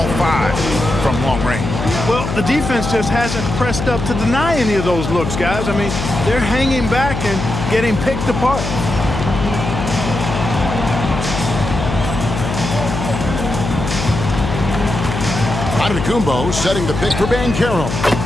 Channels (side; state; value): left; noise; hum, 4 dB below the sound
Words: 5 from long range? Well, the defense just hasn't pressed up to deny any of those looks, guys. I mean, they're hanging back and getting picked apart. Antetokounmpo setting the pick for Banchero.